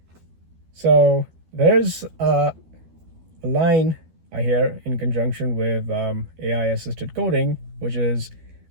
So there's a line I hear in conjunction with AI assisted coding, which is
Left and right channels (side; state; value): left; late; 12 ms